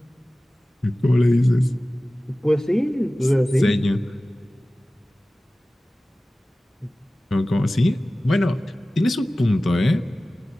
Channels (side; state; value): both; normal; correlation 0.97